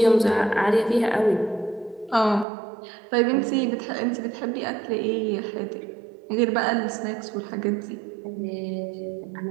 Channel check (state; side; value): drops out; left; at 2.5 s